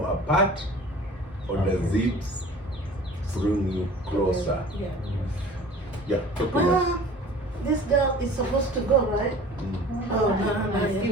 apart or does it bring you closer? Yeah, talk to me. Well, this girl is supposed to go, right? Oh, no.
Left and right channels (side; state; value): both; normal; correlation 0.44